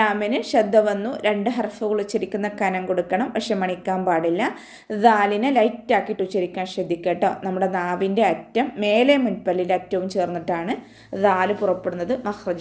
ശബ്ദ വന്നു, 2 ഹർഫുകൾ ഉച്ചരിക്കുന്ന കനം കൊടുക്കണം, പക്ഷെ മണിക്കാൻ പാടില്ല. ദാലിനെ ലൈറ്റ് ആക്കിയിട്ട് ഉച്ചരിക്കാൻ ശ്രദ്ധിക്കുക കേട്ടോ. നമ്മുടെ നാവിൻ്റെ അറ്റം മേലെ മുൻപല്ലിൻ്റെ അറ്റവും ചേർന്നിട്ടാണ് ദാല് പുറപ്പെടുന്നത്.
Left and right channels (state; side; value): identical; both; correlation 1.00